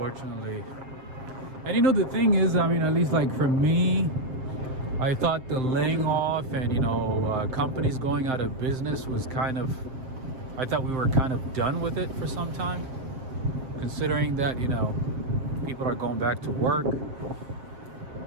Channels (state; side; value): late; left; 7.6 ms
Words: And you know, the thing is, I mean, at least like for me, I thought the laying off and, you know, companies going out of business was kind of, I thought we were kind of done with it for some time. Considering that, you know, people are going back to work.